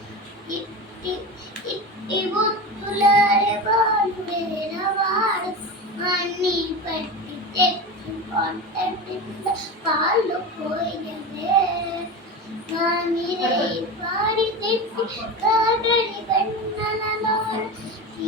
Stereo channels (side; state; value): both; normal; correlation 0.25